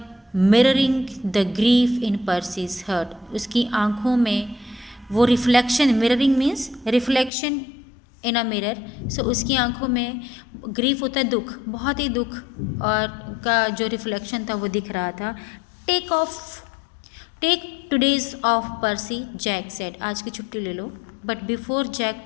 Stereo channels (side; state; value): right; drops out; at 7.3 s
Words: mirroring the grief in Percy's heart. उसकी आंखों में वो reflection, mirroring means reflection in a mirror. So उसकी आंखों में ग्रीफ होता है दुख, बहुत ही दुख और का जो रिफ्लेक्शन था वो दिख रहा था. Take today's off Percy, Jack said. आज की छुट्टी ले लो. But before Jack